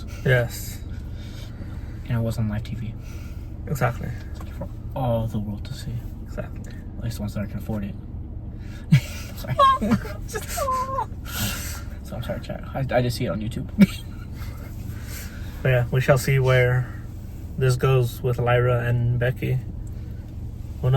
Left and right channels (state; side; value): identical; both; correlation 1.00